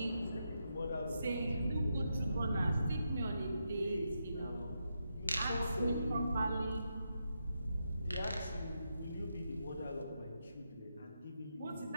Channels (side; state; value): both; inverted; correlation -0.84